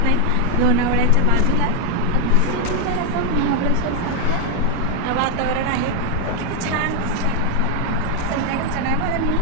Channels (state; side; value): different; both; correlation 0.01